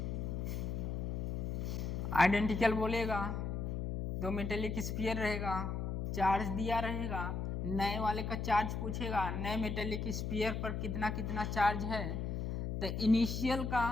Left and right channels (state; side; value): noise; left; hum, 2 dB below the sound